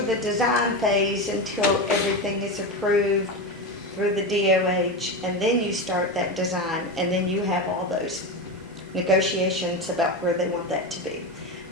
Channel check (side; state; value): both; normal; correlation 0.18